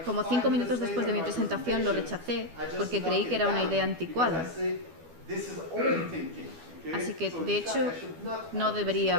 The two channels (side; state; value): left; late; 12 ms